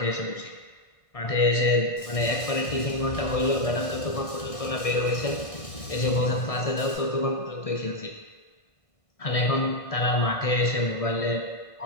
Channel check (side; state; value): right; late; 1.7 ms